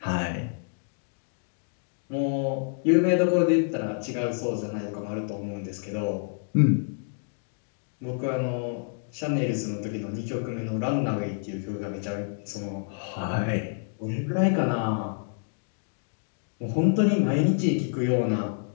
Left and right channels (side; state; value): right; silent; digital silence